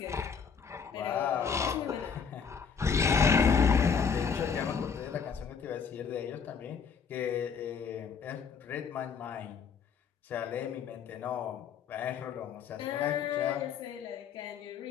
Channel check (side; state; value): right; quieter; 6.3 dB